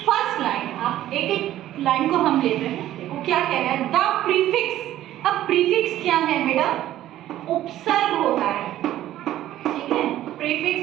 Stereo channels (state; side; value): quieter; left; 13.4 dB